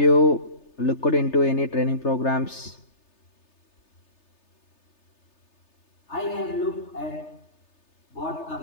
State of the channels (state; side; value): late; right; 3.3 ms